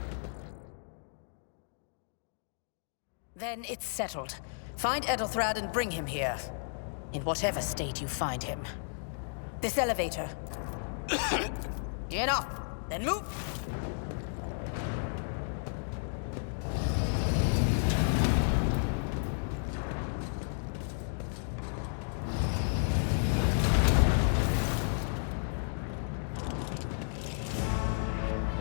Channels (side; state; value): right; silent; digital silence